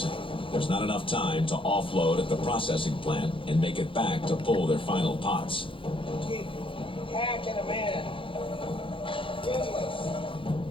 there's not enough time to offload at the processing plant and make it back to pull their final pots. Keep hacking them in.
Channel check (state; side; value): late; right; 0.25 ms